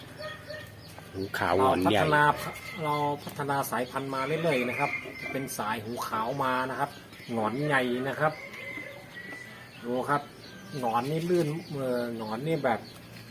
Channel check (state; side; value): identical; both; correlation 1.00